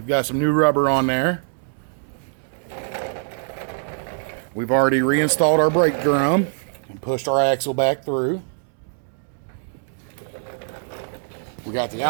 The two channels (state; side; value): silent; left; digital silence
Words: got some new rubber on there. We've already reinstalled our brake drum and pushed our axle back through. We got the